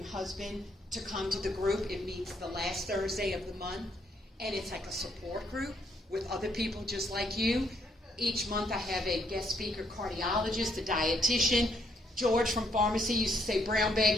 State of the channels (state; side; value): normal; both; correlation 0.72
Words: husband to come to the group. It meets the last Thursday of the month. And it's like a support group with other people just like you. Each month I have a guest speaker cardiologist, a dietitian. George from pharmacy used to say, brown